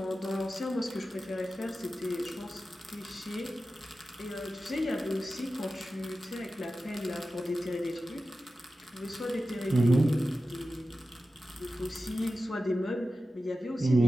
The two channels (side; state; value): both; normal; correlation 0.93